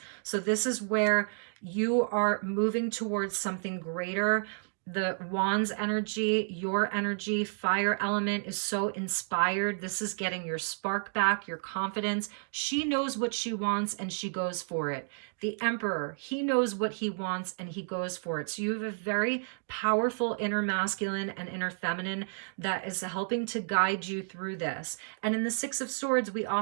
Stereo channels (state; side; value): silent; left; digital silence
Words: So this is where you are moving towards something greater. the Wands energy, your energy, fire element is so inspired. This is getting your spark back, your confidence. She knows what she wants and she goes for it. The Emperor, he knows what he wants and he goes for it. So you have a very powerful inner masculine and inner feminine that is helping to guide you through this. And in the Six of Swords, we